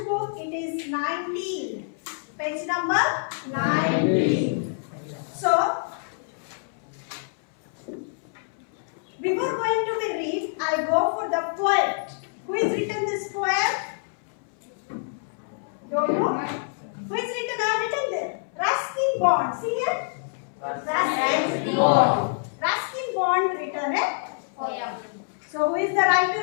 it is 19. Page number 19. So before going to the read, I go for the poet. Who has written this poem? Don't know? Who has written? I have written there. Ruskin Bond. See here? Ruskin Bond. Ruskin Bond written a poem. So who is the writer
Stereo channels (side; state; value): right; silent; 61 dB below the other